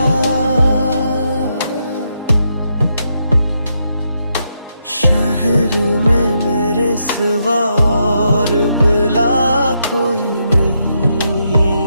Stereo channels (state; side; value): inverted; both; correlation -0.80